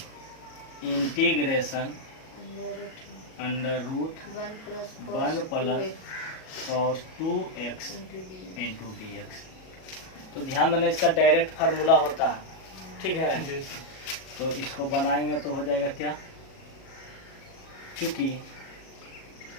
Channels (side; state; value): right; late; 37 ms